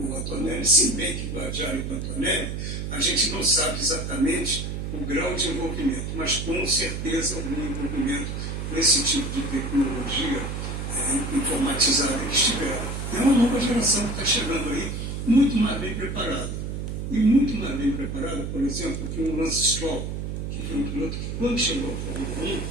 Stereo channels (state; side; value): noise; right; hum, 4 dB below the sound